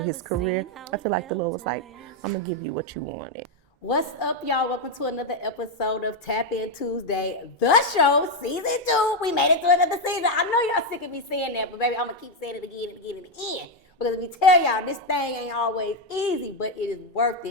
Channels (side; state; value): both; normal; correlation 0.03